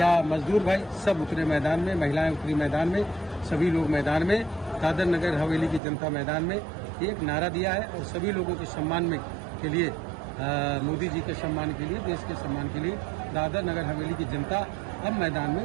मजदूर भाई सब उतरे मैदान में, महिलाएं उतरी मैदान में, सभी लोग मैदान में, दादर नगर हवेली की जनता मैदान में एक नारा दिया है और सभी लोगों के सम्मान में के लिए मोदी जी के सम्मान के लिए, देश के सम्मान के लिए दादर नगर हवेली की जनता अब मैदान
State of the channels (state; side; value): drops out; left; at 5.8 s